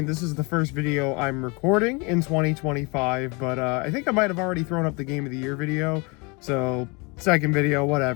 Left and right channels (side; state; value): right; quieter; 29.5 dB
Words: this is the first video I'm recording in 2025, but I think I might have already thrown up the Game of the Year video, so second video,